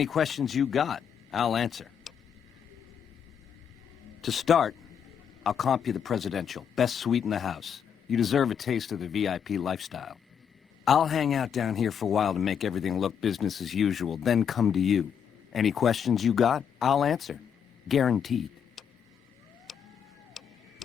questions you got, I'll answer. To start, I'll comp you the presidential. Best suite in the house. You deserve a taste of the VIP lifestyle. I'll hang out down here for a while to make everything look business as usual, then come to you. Any questions you got, I'll answer. Guaranteed.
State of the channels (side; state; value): right; quieter; 7.8 dB